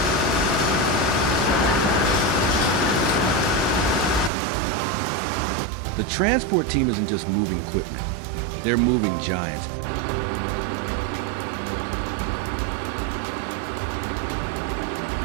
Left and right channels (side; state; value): left; drops out; at 4.3 s